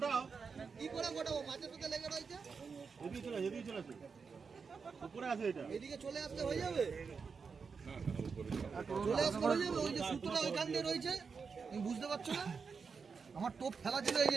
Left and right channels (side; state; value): left; quieter; 5.4 dB